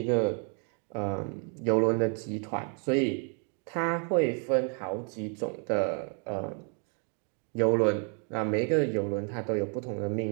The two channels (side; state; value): left; quieter; 39.7 dB